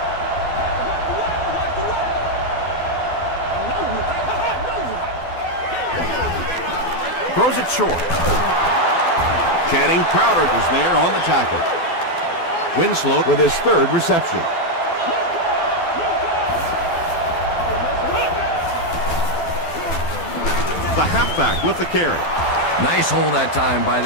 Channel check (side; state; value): right; late; 12 ms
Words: Throws it short. Channing Crowder was there on the tackle. Winslow with his third reception. The halfback with the carry. Nice hold that time by